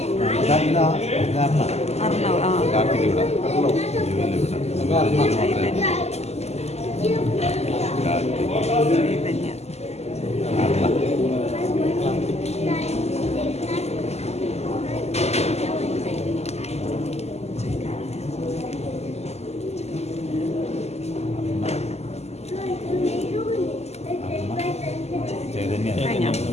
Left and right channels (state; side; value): late; right; 0.31 ms